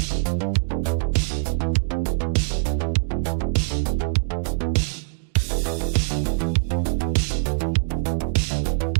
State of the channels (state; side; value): silent; left; digital silence